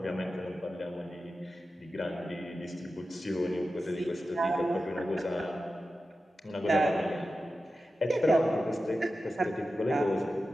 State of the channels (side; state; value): both; normal; correlation 0.92